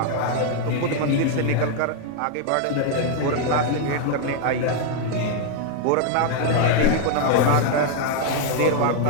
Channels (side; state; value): both; different; correlation 0.00